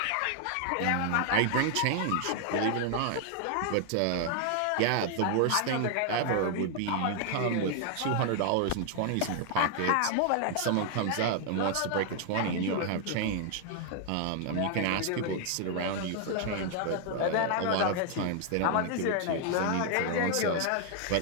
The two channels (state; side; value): different; both; correlation 0.00